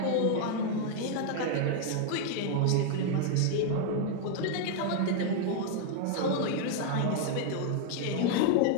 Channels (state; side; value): different; both; correlation 0.00